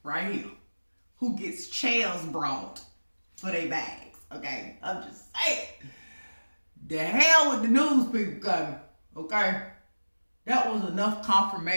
right here who gets chairs brought for their bags, okay? I'm just saying. The hell with the news people coming, okay? That was enough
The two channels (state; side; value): inverted; both; correlation -1.00